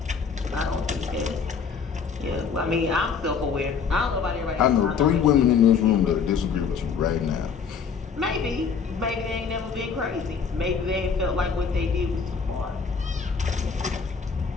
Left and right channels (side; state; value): right; quieter; 6.0 dB